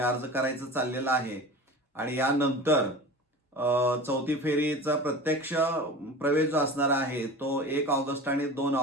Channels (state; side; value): normal; both; correlation 0.35